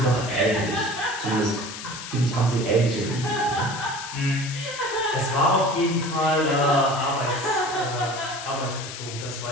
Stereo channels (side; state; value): left; noise; hiss, 10 dB below the sound